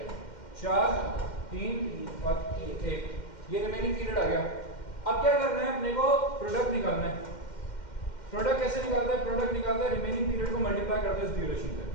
4 3 और 1, ये रिमेनिंग पीरियड आ गया। अब क्या करना है, अपने को प्रोडक्ट निकालना है। प्रोडक्ट कैसे निकालता है, प्रोडक्ट निकालता है रिमेनिंग पीरियड को मल्टीप्लाई करते हैं इस ड्यूरेशन से।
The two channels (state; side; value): late; right; 2.1 ms